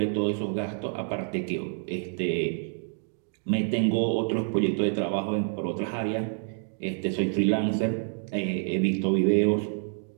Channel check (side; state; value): left; silent; 59 dB below the other